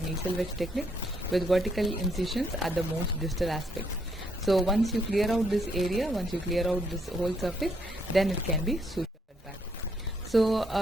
wedge technique with vertical incisions at the most distal aspects. So once you clear out this area, once you clear out this whole surface, then it can be sutured back. So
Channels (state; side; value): normal; both; correlation 0.73